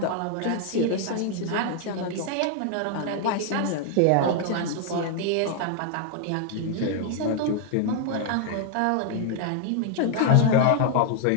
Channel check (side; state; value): both; different; correlation 0.00